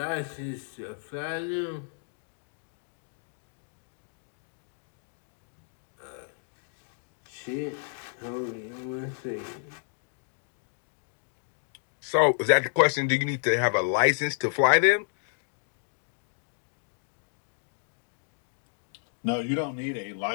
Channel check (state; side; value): silent; right; digital silence